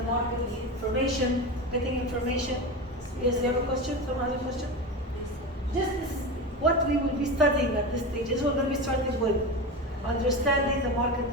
market, information, getting information. Yes, you have a question? Someone has a question? This is what we will be studying at this stage. This is what we're going to be starting with. Understanding the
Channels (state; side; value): normal; both; correlation 0.23